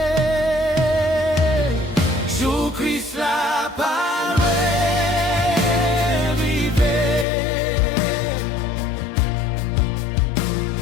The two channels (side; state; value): right; drops out; at 7.2 s